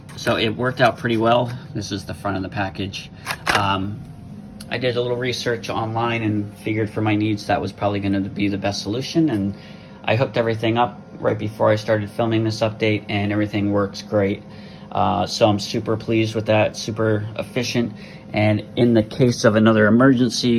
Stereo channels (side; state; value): both; identical; correlation 1.00